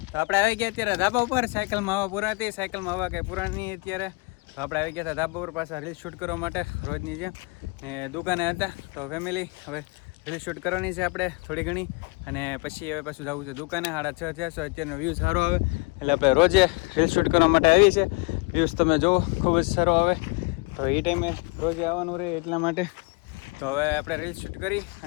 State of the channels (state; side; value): quieter; right; 28.4 dB